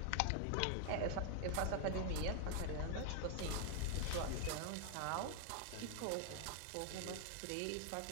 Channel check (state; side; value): different; both; correlation 0.00